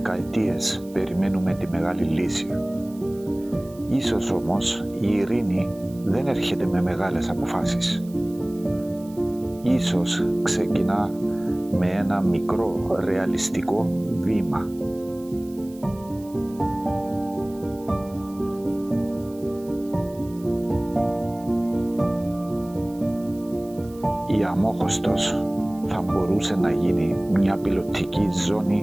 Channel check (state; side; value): noise; right; hiss, 24 dB below the sound